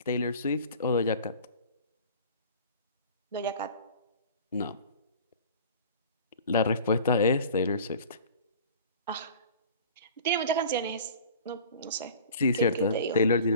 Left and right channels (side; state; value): both; inverted; correlation -0.43